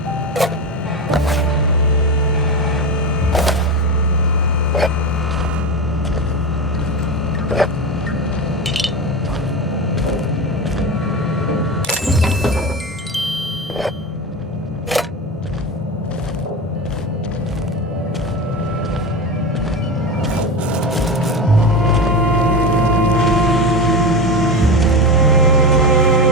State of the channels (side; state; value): both; normal; correlation 0.22